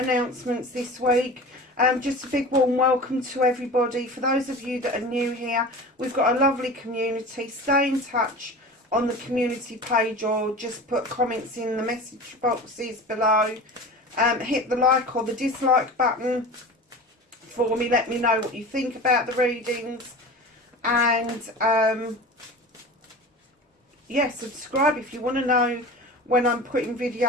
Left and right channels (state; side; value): normal; both; correlation 0.34